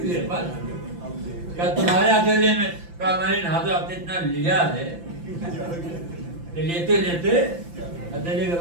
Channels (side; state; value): left; late; 5.8 ms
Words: کیا تمہارے ہتھیلی میں؟ کہا میں نے ہاتھوں آپ نے اتنا لیا ہے لیتے لیتے ہتھیلی کے